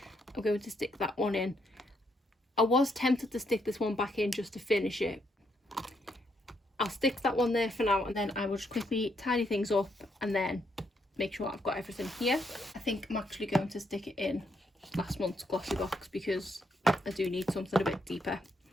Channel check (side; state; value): both; normal; correlation 0.76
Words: I'm going to stick that one in. I was tempted to stick this one back in just to finish it. I'll stick that one there for now, and then I will just quickly tidy things up and then make sure I've got everything here. I think I'm actually going to stick it in last month's Glossybox because I do need something a bit deeper.